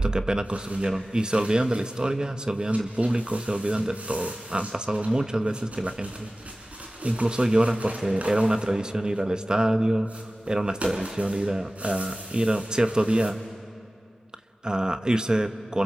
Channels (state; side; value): normal; both; correlation 0.97